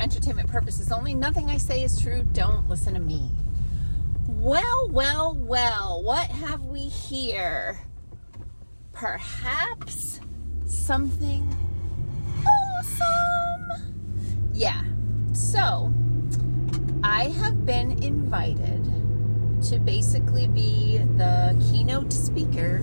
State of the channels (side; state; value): both; inverted; correlation -1.00